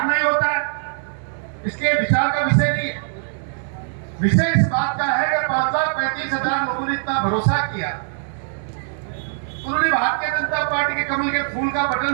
ही होता है। इसके विचार का विषय नहीं है। विषय इस बात का है कि 5,35,000 लोगों ने इतना भरोसा किया, उन्होंने भारतीय जनता पार्टी के कमल के फूल का बटन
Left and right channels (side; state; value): left; silent; 62 dB below the other